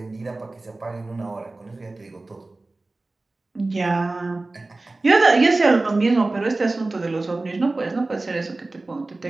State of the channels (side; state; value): left; quieter; 3.1 dB